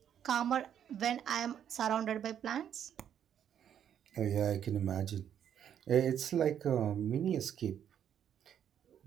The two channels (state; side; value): quieter; left; 9.3 dB